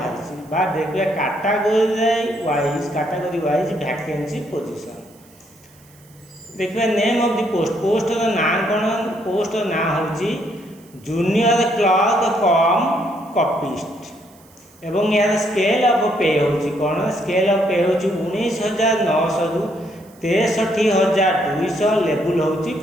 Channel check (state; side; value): noise; right; hiss, 28 dB below the sound